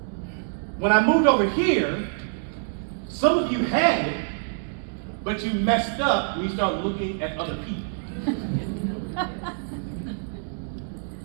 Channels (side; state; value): left; silent; 61 dB below the other